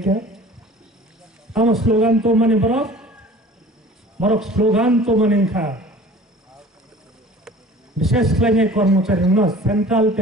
আমার স্লোগান তো মানে বরক স্লোগান তো মানে খা বিশেষ লাইনে কর্মচারী না সেন্ট্রাল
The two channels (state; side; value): normal; both; correlation 0.45